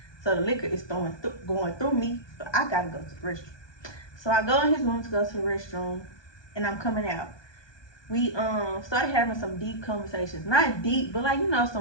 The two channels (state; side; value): late; right; 1.2 ms